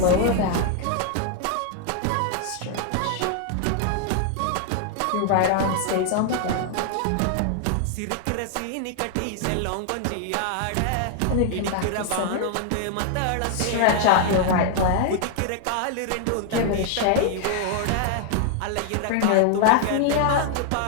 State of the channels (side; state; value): both; different; correlation 0.00